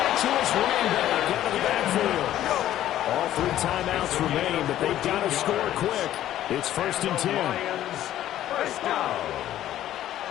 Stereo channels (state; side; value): quieter; right; 12.7 dB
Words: to his running back out of the backfield. All 3 timeouts remain, but they've got to score quick. It's first and 10. First down.